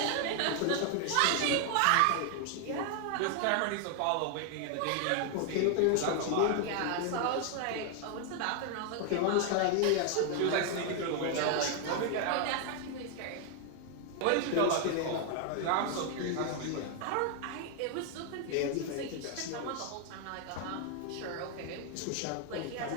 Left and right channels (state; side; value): different; both; correlation 0.00